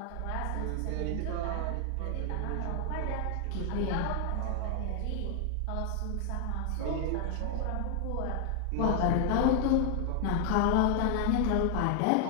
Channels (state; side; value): different; both; correlation 0.00